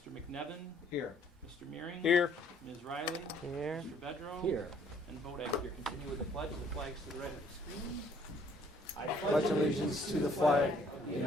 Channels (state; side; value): normal; both; correlation 0.62